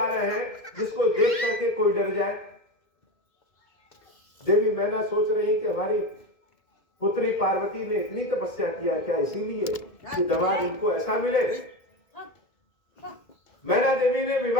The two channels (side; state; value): right; late; 2.2 ms